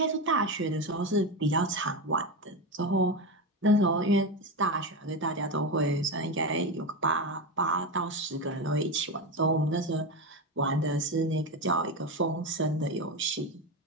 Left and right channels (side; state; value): both; normal; correlation 0.16